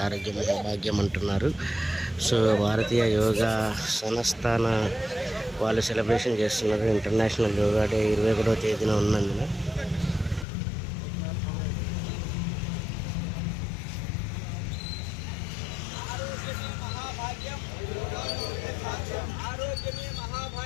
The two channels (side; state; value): right; drops out; at 10.5 s